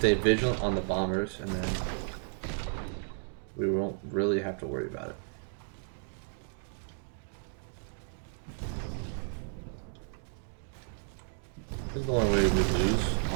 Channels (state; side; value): silent; left; 56 dB below the other